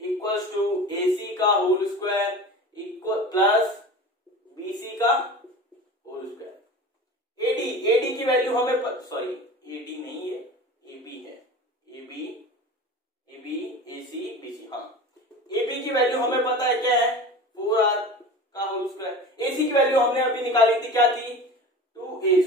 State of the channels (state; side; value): normal; both; correlation 0.35